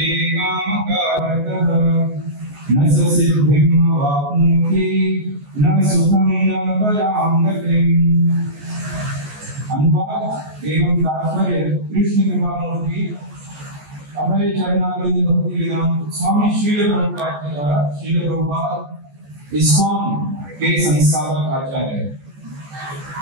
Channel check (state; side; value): late; left; 14 ms